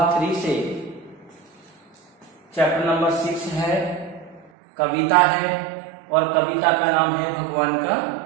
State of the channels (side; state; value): left; drops out; at 4.5 s